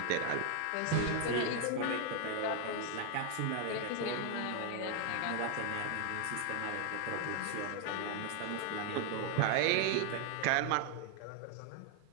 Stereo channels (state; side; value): different; both; correlation 0.00